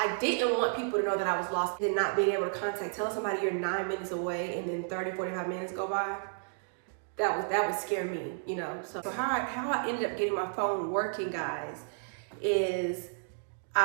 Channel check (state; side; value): silent; left; digital silence